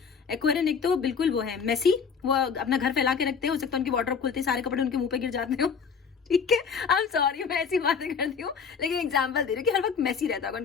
एक्वेरियन एक तो बिल्कुल वो है मेसी, वो अपना घर फैला के रखते हैं, हो सकता है उनकी वार्डरोब खुलते सारे कपड़े उनके मुंह पे गिर जाते हो, ठीक है। आई एम सॉरी, मैं ऐसी बातें करती हूँ, लेकिन एग्जांपल दे रही हूँ कि हर वक्त मैसी रहता होगा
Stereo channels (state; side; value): quieter; right; 6.1 dB